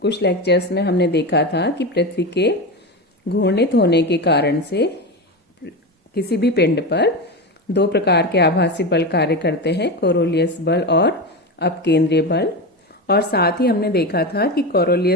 कुछ लेक्चर्स में हमने देखा था कि पृथ्वी के घूर्णित होने के कारण से किसी भी पिंड पर दो प्रकार के आभासी बल कार्य करते हैं, कोरोलियस बल और अपकेंद्रीय बल। और साथ ही हमने देखा था कि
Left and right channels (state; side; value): normal; both; correlation 0.20